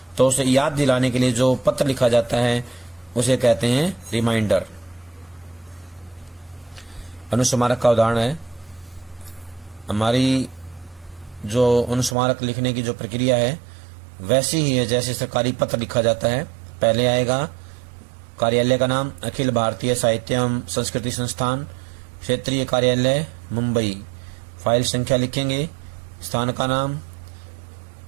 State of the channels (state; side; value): drops out; left; at 12.2 s